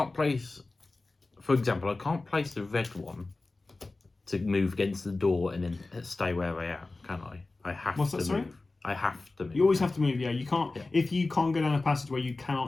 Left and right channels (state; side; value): quieter; right; 3.3 dB